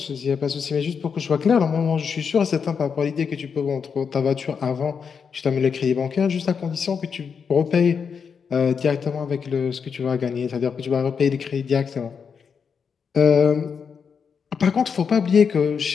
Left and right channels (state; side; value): quieter; right; 6.3 dB